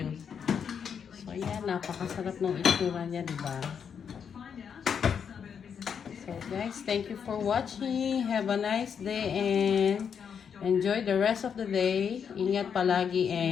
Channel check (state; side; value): quieter; right; 7.2 dB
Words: So yan, napakasarap ng itsura niya, diba? So guys, thank you for watching. Have a nice day and enjoy the rest of the day. Ingat palagi